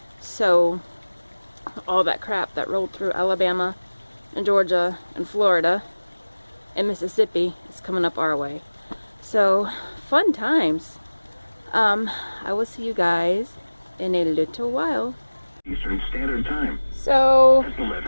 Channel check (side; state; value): both; inverted; correlation -1.00